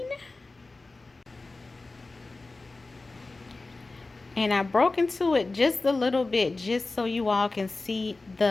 And I broke into it just a little bit just so you all can see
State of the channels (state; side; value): quieter; right; 3.4 dB